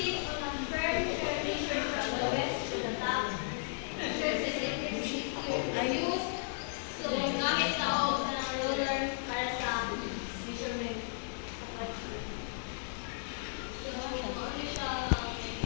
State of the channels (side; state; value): right; silent; 55 dB below the other